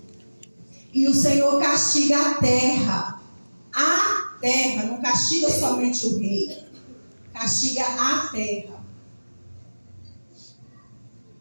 E o Senhor castiga a terra. A terra, não castiga somente o rei. Castiga a terra.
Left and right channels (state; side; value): inverted; both; correlation -1.00